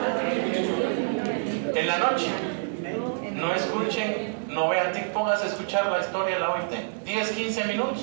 En la noche, no escuchen, no vean TikTok, pónganse a escuchar la historia de la OIT. 10, 15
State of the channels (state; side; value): silent; left; 58 dB below the other